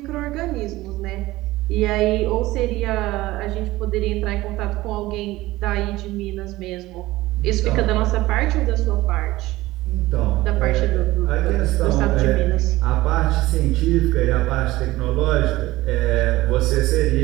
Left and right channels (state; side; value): quieter; left; 18.0 dB